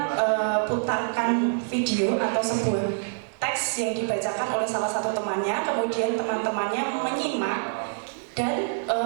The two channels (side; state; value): left; silent; digital silence